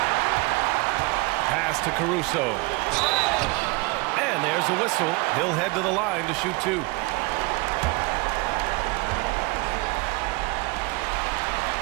Pass to Caruso. And there's a whistle. He'll head to the line to shoot 2.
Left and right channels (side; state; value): left; quieter; 25.6 dB